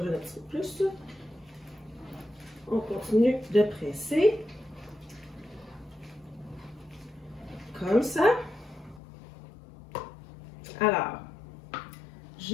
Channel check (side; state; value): right; drops out; at 9.0 s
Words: d'un petit peu plus. On continue de presser. Comme ça. Alors,